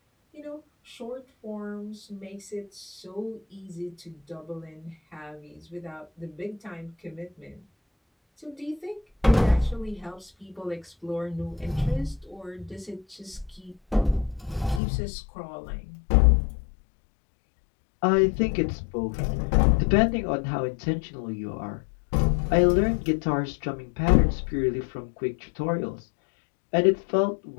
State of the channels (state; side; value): drops out; right; at 14.8 s